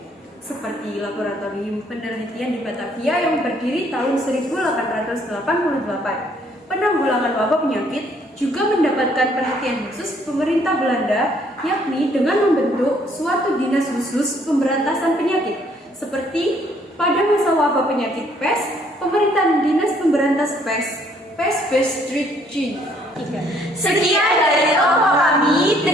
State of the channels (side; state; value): both; normal; correlation 0.65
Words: seperti Laboratorium Penelitian di Batavia yang berdiri tahun 1888. Penanggulangan wabah penyakit juga mendapatkan perhatian khusus pemerintah Belanda, yakni dengan membentuk suatu dinas khusus pemberantasan penyakit, seperti pada masa wabah penyakit pes, pemerintahan dinas pemberantas pes Street G. Sekian dari kelompok kami.